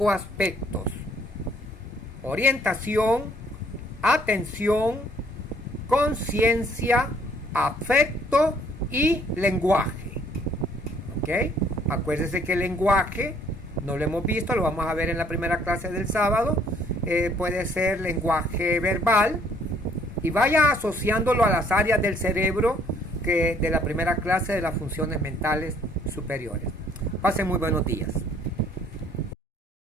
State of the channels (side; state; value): both; normal; correlation 0.62